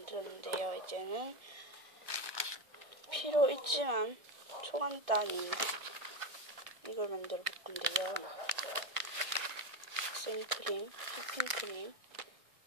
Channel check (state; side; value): late; left; 1.6 ms